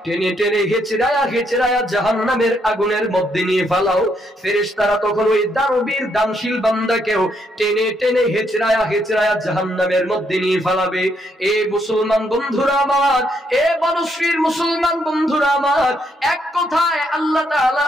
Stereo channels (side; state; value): both; normal; correlation 0.74